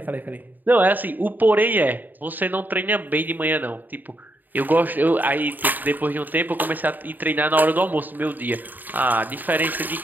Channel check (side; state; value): left; late; 0.088 ms